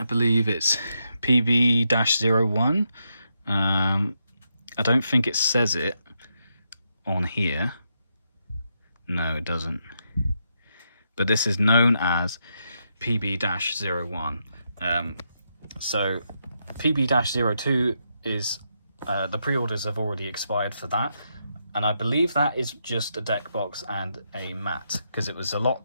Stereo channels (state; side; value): inverted; both; correlation -0.82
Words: believe it's PB-01. I don't think it says it on here. No, it doesn't. But this is known as PB-01. So PB-02 is the pre-orders have already expired for that, and I believe that is just a deck box and a mat, because it was a lot